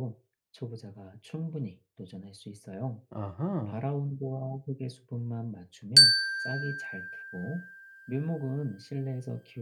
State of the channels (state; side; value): identical; both; correlation 1.00